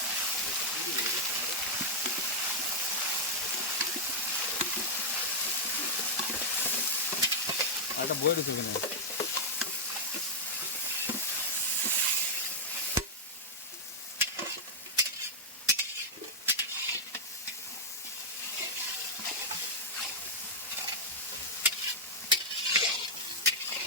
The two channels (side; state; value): both; normal; correlation -0.04